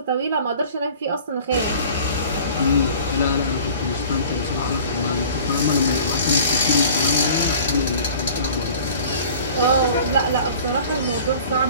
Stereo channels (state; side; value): inverted; both; correlation -0.45